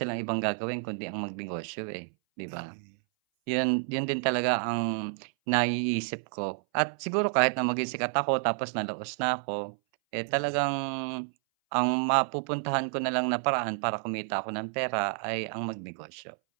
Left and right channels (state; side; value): silent; left; 58 dB below the other